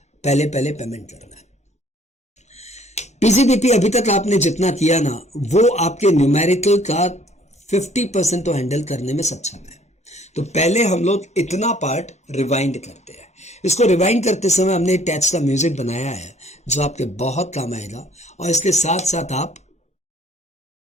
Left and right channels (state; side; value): normal; both; correlation 0.58